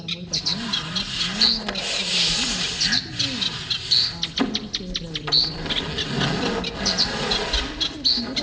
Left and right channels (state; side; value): identical; both; correlation 1.00